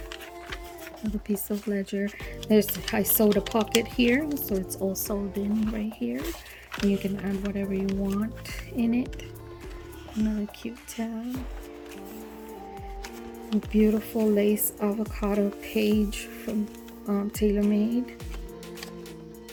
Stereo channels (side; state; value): both; identical; correlation 1.00